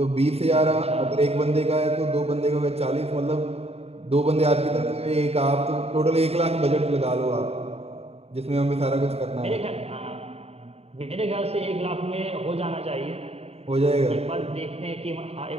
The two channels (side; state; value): left; late; 0.30 ms